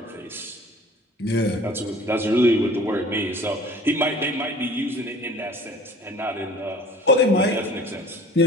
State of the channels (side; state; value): both; normal; correlation 0.47